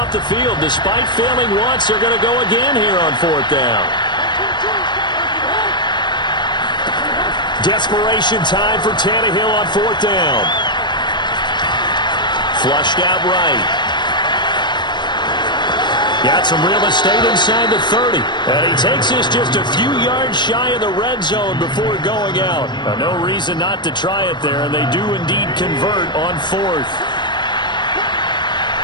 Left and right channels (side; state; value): right; late; 0.22 ms